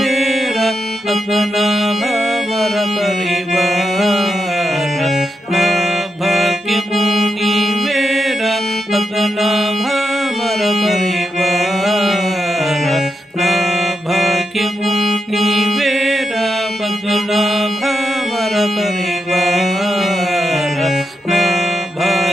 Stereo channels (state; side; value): normal; both; correlation 0.85